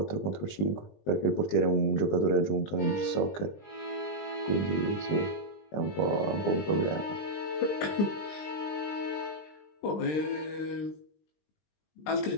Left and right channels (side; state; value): right; late; 20 ms